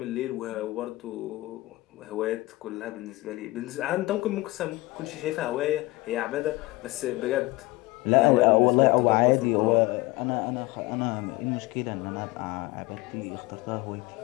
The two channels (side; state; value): right; quieter; 20.5 dB